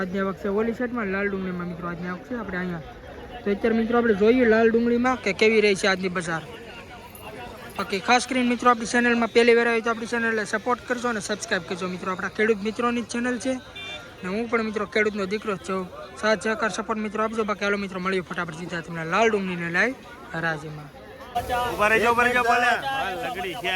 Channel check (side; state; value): both; identical; correlation 1.00